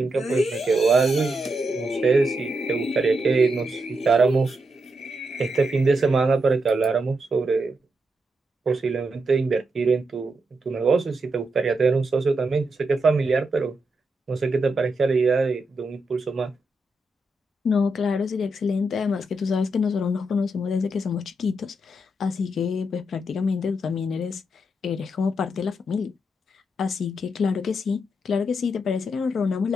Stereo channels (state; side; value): normal; both; correlation 0.83